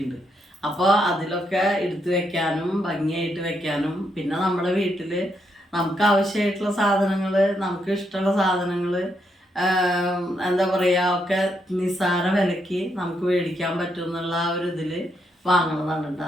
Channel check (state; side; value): normal; both; correlation 0.78